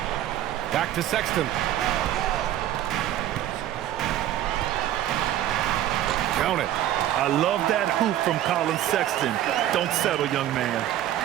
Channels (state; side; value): quieter; left; 12.4 dB